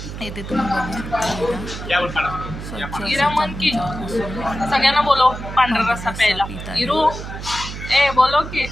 इथे तुम्ही बघू शकता इरा सगळ्यांना बोलो पांढरा रस्सा प्यायला. इरू ए बोलो की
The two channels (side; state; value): right; noise; hum, 9 dB below the sound